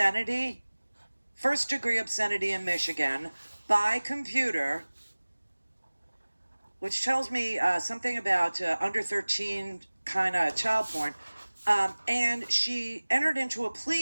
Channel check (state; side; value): inverted; both; correlation -1.00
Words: in Michigan by computer, which tells me something about under 13 kind of child porn. And she entered into a